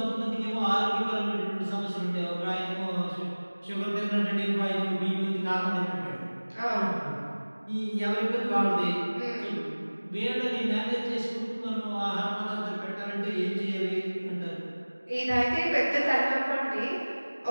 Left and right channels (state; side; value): inverted; both; correlation -1.00